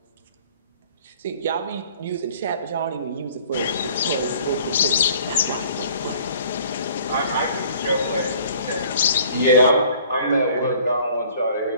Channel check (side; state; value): both; inverted; correlation -0.53